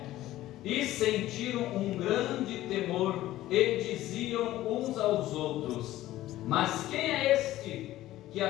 E sentiram um grande temor, e diziam uns aos outros: Mas quem é este, que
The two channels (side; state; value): right; quieter; 15.1 dB